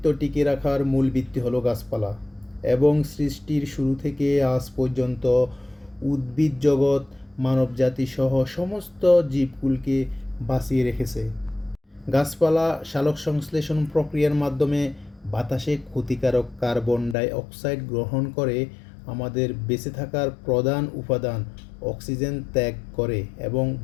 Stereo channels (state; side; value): drops out; right; at 17.2 s